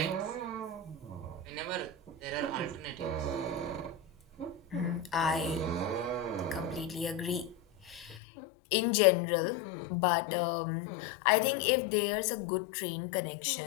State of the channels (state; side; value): drops out; right; at 8.2 s